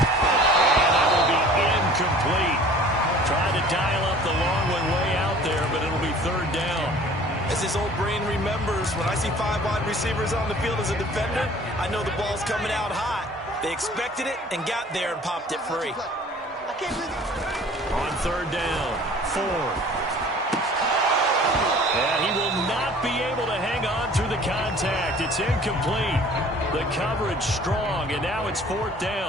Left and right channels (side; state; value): both; normal; correlation 0.49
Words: that will be incomplete. Trying to dial up the long one way out there, but it'll be 3rd down. As his old brain remembers, when I see 5 wide receivers on the field as a defender, I know the ball's coming out hot. They expected it and got there and popped it free. On 3rd down, Ford. And he will not be able to hang on through the contact. It's incomplete. The coverage strong, and now it's 4th